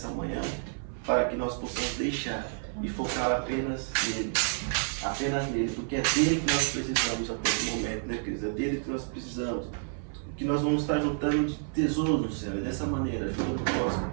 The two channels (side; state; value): left; silent; 58 dB below the other